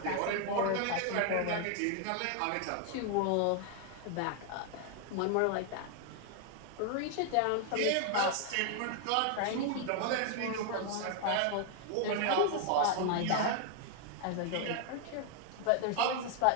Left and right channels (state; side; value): different; both; correlation 0.00